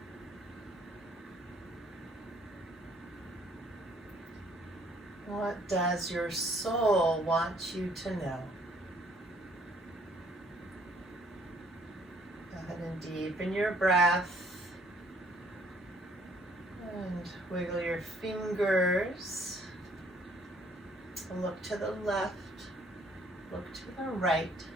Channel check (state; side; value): normal; both; correlation 0.62